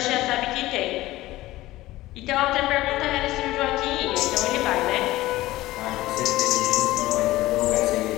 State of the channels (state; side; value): quieter; right; 17.1 dB